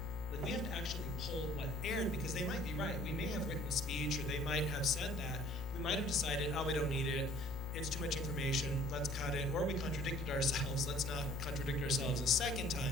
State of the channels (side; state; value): both; normal; correlation 0.54